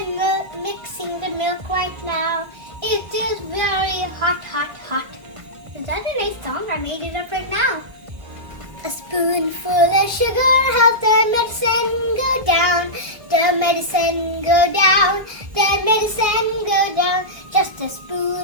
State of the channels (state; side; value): late; left; 1.3 ms